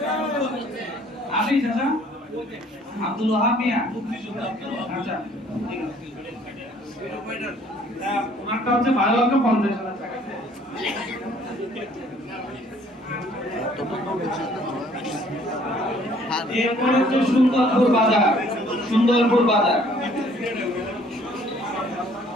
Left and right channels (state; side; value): normal; both; correlation 0.59